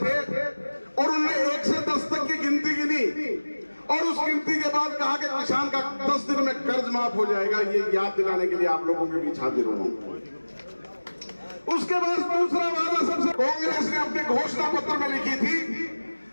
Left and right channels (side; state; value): both; inverted; correlation -1.00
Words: और उन्होंने 1 से 10 तक की गिनती गिनी और उस गिनती के बाद कहा कि किसान का 10 दिन में कर्ज माफ हो जाएगा। ये याद दिलाने के लिए आप लोगों के बीच हाजिर हूं। उसके बाद दूसरा वादा सबसे कांग्रेस ने अपने घोषणा पत्र में लिखी थी